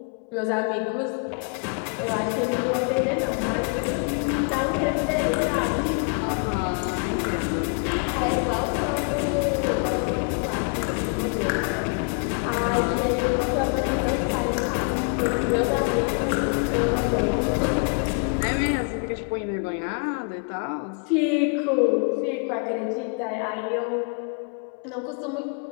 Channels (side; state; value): right; quieter; 39.2 dB